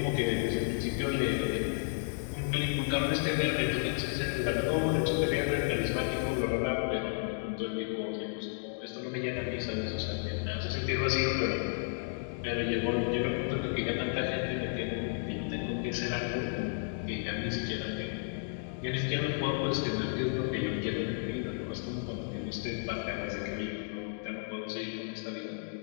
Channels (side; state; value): right; silent; digital silence